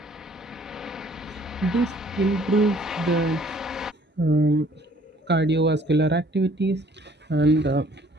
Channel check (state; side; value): normal; both; correlation 0.59